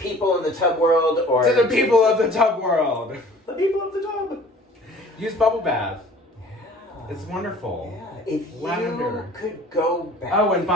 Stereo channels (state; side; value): normal; both; correlation 0.49